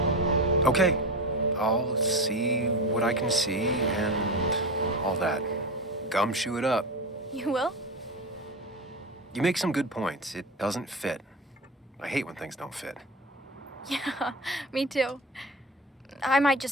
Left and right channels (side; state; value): both; normal; correlation 0.23